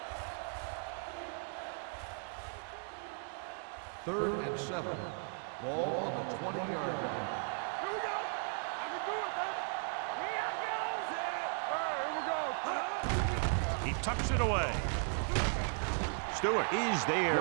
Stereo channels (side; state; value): left; silent; 53 dB below the other